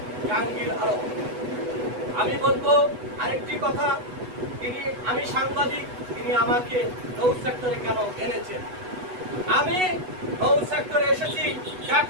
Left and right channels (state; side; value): late; left; 8.1 ms